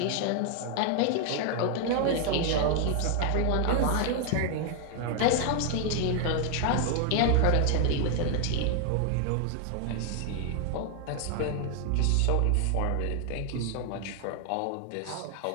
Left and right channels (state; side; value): different; both; correlation 0.00